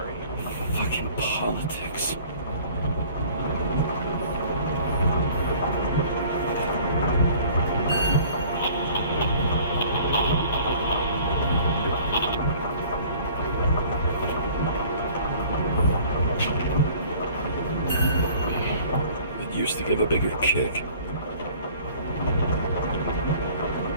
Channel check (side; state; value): both; inverted; correlation -0.51